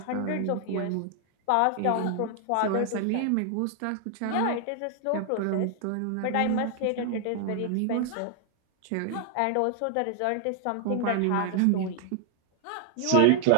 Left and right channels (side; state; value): both; different; correlation 0.00